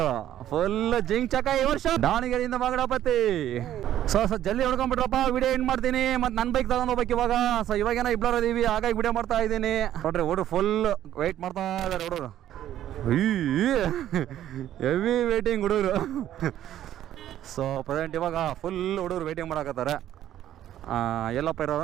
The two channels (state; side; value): quieter; left; 11.9 dB